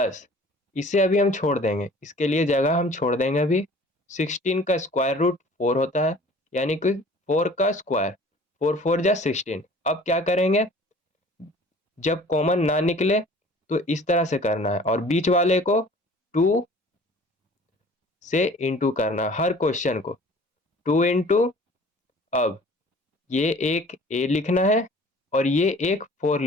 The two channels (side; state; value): both; normal; correlation 0.48